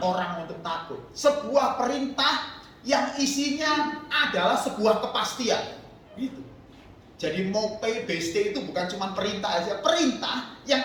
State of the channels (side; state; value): both; identical; correlation 1.00